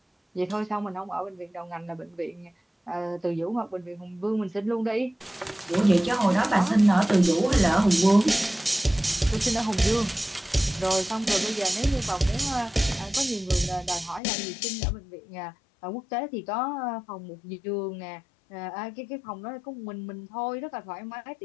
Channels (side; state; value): right; drops out; at 14.2 s